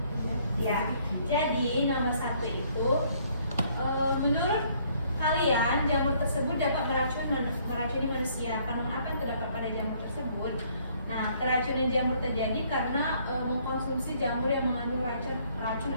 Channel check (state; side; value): inverted; both; correlation -0.64